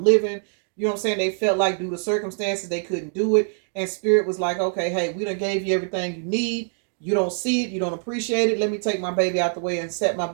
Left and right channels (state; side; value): silent; left; 63 dB below the other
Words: You know what I'm saying? They felt like due to circumstances, they couldn't do it. And spirit was like, okay, hey, we done gave you everything you need. You don't see it. You don't appreciate it. Let me take my baby out the way and set my